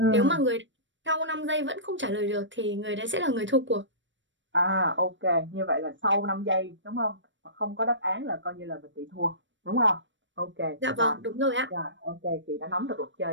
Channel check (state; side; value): late; left; 0.54 ms